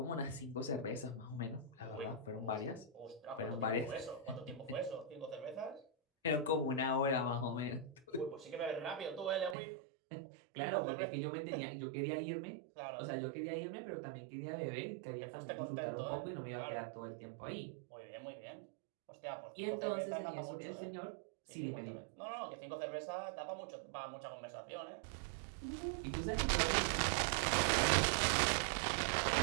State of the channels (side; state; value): left; drops out; at 9.6 s